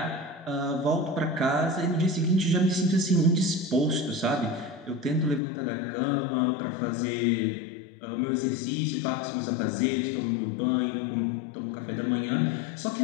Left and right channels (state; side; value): drops out; right; at 5.4 s